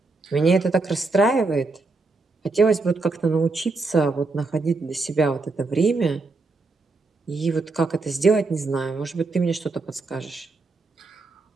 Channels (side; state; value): left; quieter; 3.6 dB